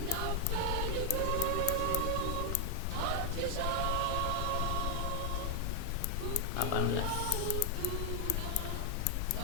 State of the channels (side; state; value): both; different; correlation 0.00